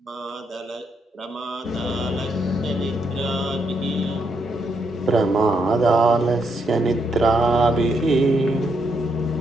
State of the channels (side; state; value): both; normal; correlation 0.78